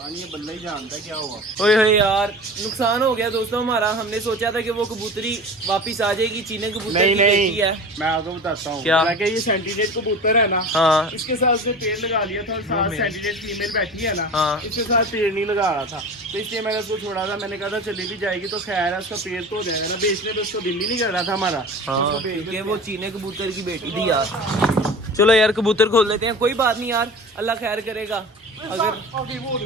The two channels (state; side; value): normal; both; correlation 0.36